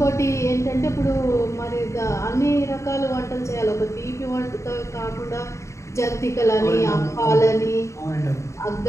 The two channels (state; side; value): late; right; 0.14 ms